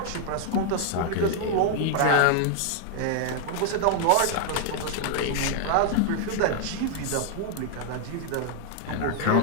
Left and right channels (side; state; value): both; different; correlation 0.00